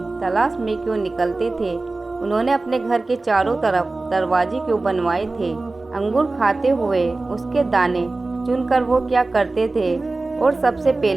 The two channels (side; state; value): left; quieter; 3.3 dB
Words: तलाश में क्यों निकलते थे? उन्होंने अपने घर के चारों तरफ दरवाजे क्यों बनवाए थे? अंगूर खाते हुए उसके दाने चुनकर वो क्या करते थे? और सबसे